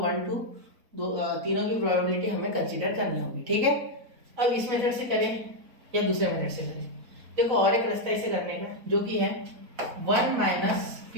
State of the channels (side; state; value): left; late; 4.1 ms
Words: 1 2 तीनों की प्रोबेबिलिटी हमें कंसीडर करनी होगी, ठीक है। अब इस मेथड से करें या दूसरे मेथड से करें, देखो और एक रास्ता इसे करने का, जो कि है 1 माइनस